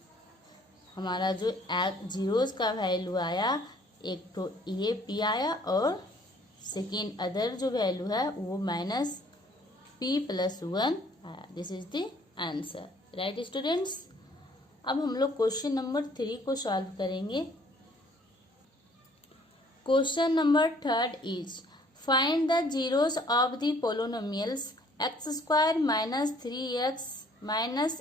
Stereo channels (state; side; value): normal; both; correlation 0.59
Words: हमारा जो जीरोस का वैल्यू आया, एक तो ए पी आया और सेकेंड अदर जो वैल्यू है वो माइनस p प्लस 1 आया। This is the answer, right students. अब हम लोग क्वेश्चन नंबर 3 को सॉल्व करेंगे। Question number 3 is find the zeros of the polynomials x square minus 3x minus